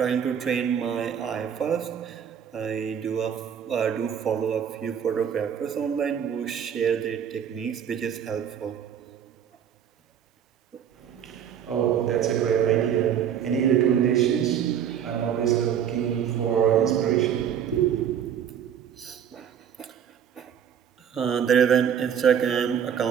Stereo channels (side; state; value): left; quieter; 8.6 dB